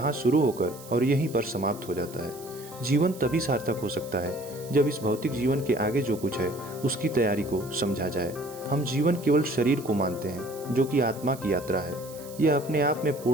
शुरू होकर और यहीं पर समाप्त हो जाता है। जीवन तभी सार्थक हो सकता है जब इस भौतिक जीवन के आगे जो कुछ है उसकी तैयारी को समझा जाए। हम जीवन केवल शरीर को मानते हैं जो कि आत्मा की यात्रा है। यह अपने आप में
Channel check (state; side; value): noise; right; hiss, 18 dB below the sound